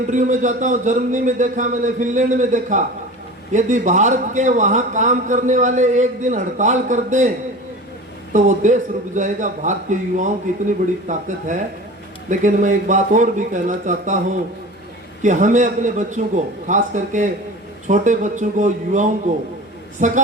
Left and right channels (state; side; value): normal; both; correlation 0.35